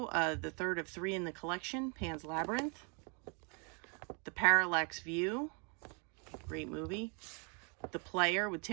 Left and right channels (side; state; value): left; quieter; 36.1 dB